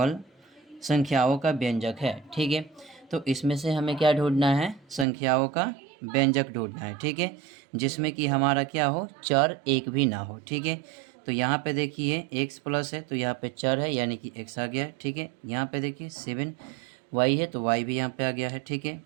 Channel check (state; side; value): drops out; left; at 5.1 s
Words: संख्याओं का व्यंजक है। ठीक है। तो इसमें से हमें क्या ढूंढना है, संख्याओं का व्यंजक ढूंढना है। ठीक है। जिसमें कि हमारा क्या हो, चर एक भी ना हो। ठीक है। तो यहाँ पे देखिए x प्लस है, तो यहाँ पे चर है यानी कि x आ गया है। ठीक है। यहाँ पे देखिए 7y है, तो y भी यहाँ पे आ गया है। ठीक है।